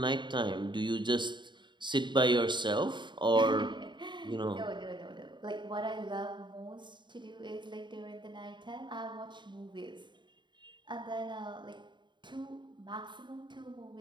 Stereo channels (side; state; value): left; late; 0.22 ms